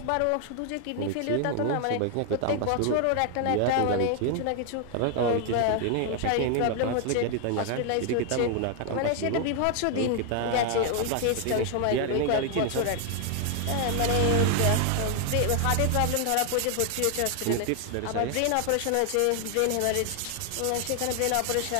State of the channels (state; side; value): different; both; correlation 0.00